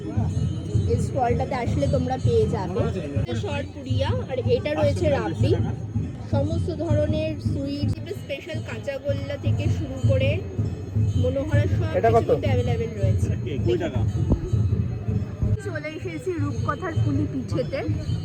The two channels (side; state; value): both; identical; correlation 1.00